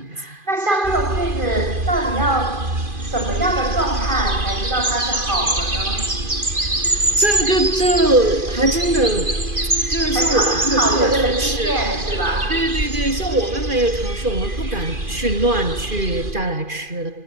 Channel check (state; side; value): late; left; 2.5 ms